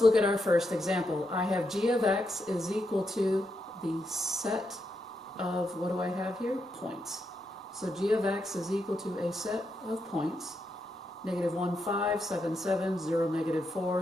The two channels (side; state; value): both; normal; correlation 0.83